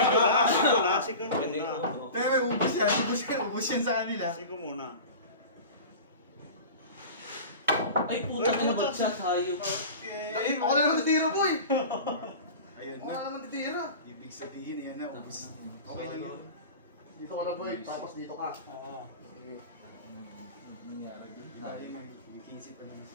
Sige Pwede muna. uno. Pero may ubus yan sa kanila. Sige muna. Ay, puta ka na ba siya tayo? Okay. Ako na naman titira, boy! Ayun Ako na. na naman titira. Ibig sabihin yan na, ubus. Okay lang yun. Dito ka lang, boy. Tapos dito ka. Ah. Sige. Nangyari din. Ayun na, yung 15 pa naman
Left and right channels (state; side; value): inverted; both; correlation -0.34